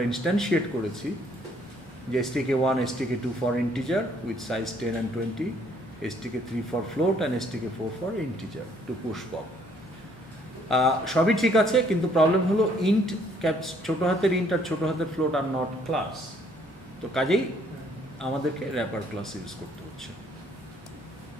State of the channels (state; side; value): normal; both; correlation 0.64